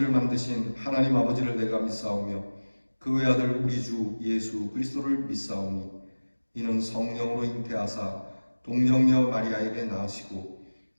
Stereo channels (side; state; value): both; inverted; correlation -1.00